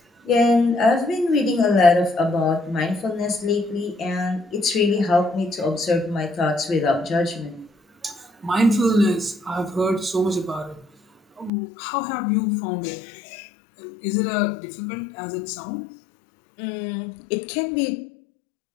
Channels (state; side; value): drops out; right; at 11.5 s